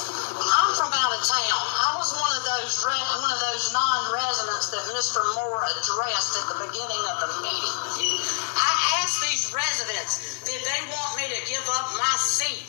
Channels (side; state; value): right; silent; digital silence